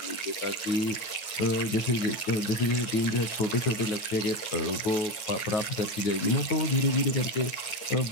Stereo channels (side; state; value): right; late; 9.3 ms